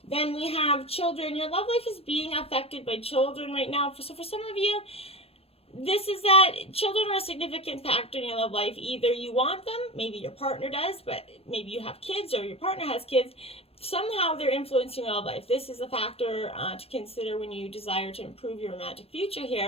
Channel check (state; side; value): late; right; 0.28 ms